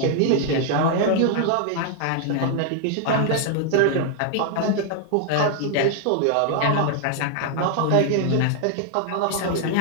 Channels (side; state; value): both; different; correlation 0.00